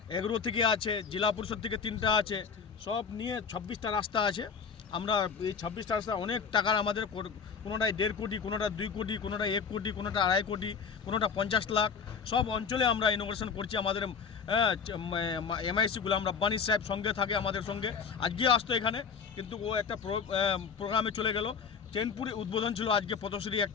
এগ্রো থেকে আছে, জেলা পরিষদ থেকে 3টা আছে, সব নিয়ে 26টা রাস্তা আছে। আমরা এই 26টা রাস্তা অনেক টাকার আমাদের, কোনোটায় 1.5 কোটি, কোনোটা 2 কোটি, কোনোটা 1 কোটি, কোনোটা 2.5 কোটি, কোনোটা 50 লাখ, সব অঞ্চলে আমরা ইনোগ্রেশন করছি। আমাদের এমআইসি গুলাম রাব্বানি সাহেব সঙ্গে থাকে আমাদের সঙ্গে, আজকে আসতো এখানে, কিন্তু ও একটা প্রোগ্রামে চলে গেল। চেনপুরে উদ্বোধন ছিল আজকে, পথশ্রী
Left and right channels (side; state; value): right; quieter; 6.1 dB